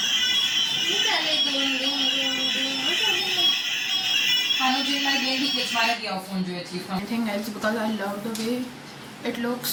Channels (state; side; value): identical; both; correlation 1.00